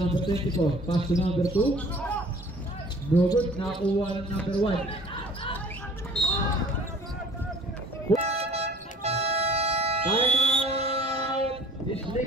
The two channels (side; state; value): both; normal; correlation 0.50